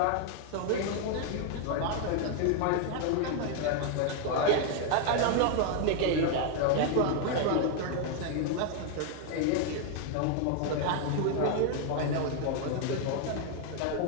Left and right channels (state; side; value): different; both; correlation 0.00